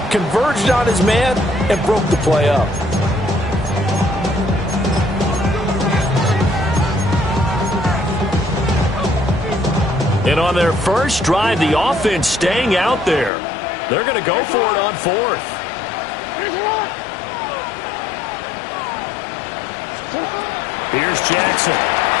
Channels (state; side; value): drops out; right; at 13.3 s